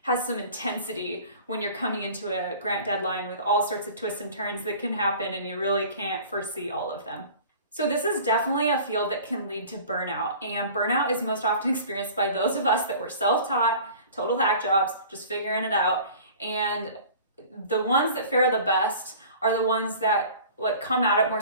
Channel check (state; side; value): inverted; both; correlation -0.44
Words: some intensity when you're coming into a grant deadline with all sorts of twists and turns that can happen and you really can't foresee all of them. So this is definitely a field that can lead to burnout, and burnout is most often experienced by those of us that were self-taught, total hack jobs, just figuring it out. And the ones that fare the best are the ones that come at it more